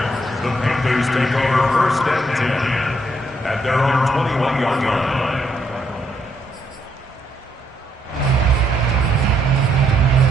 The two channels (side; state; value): both; normal; correlation 0.73